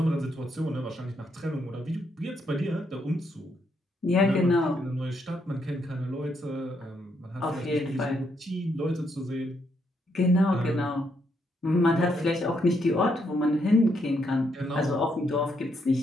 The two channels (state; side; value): normal; both; correlation 0.76